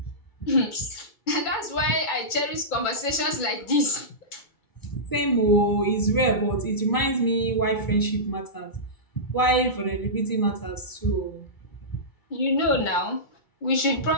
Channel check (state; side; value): late; right; 2.3 ms